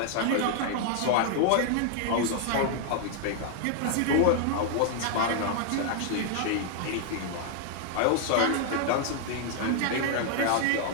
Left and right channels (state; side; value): different; both; correlation 0.00